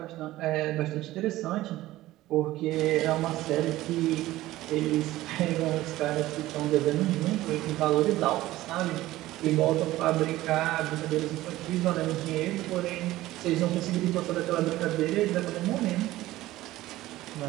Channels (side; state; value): left; quieter; 16.3 dB